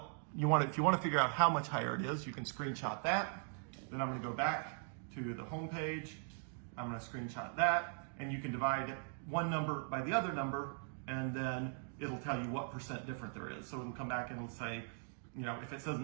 if you want to figure out how much higher it is, you can screenshot that. Then I'm going to go back to the home page. I'm going to screenshot that, and you can divide one number by the other number, and then it'll tell you what percent different there is. So it'll come back and it'll say, if it says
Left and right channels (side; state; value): left; silent; 51 dB below the other